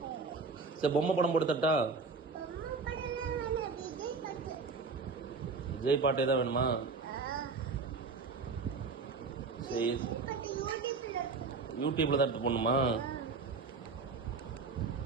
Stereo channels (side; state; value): left; quieter; 4.4 dB